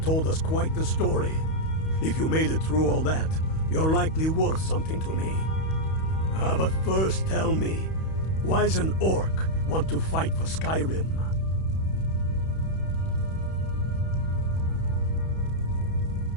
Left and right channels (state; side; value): late; right; 31 ms